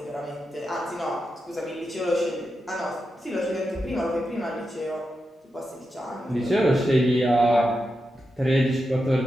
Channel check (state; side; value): normal; both; correlation 0.88